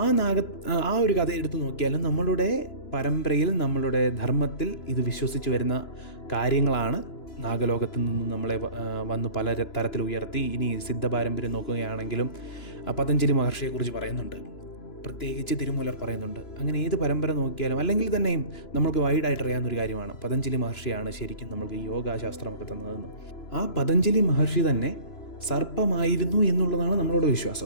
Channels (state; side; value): late; right; 2.9 ms